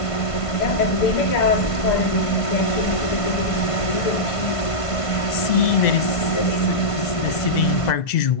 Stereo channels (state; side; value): late; right; 1.5 ms